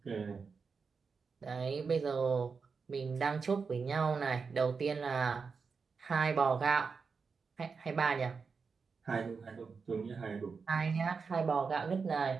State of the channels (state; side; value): quieter; left; 5.2 dB